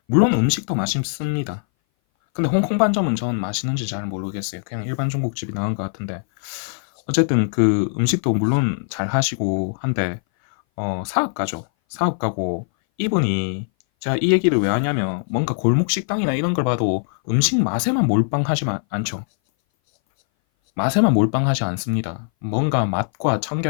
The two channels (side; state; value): right; silent; 59 dB below the other